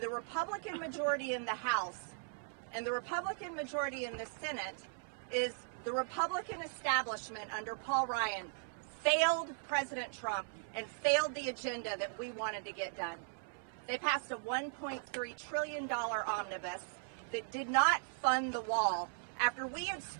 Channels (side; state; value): left; silent; 52 dB below the other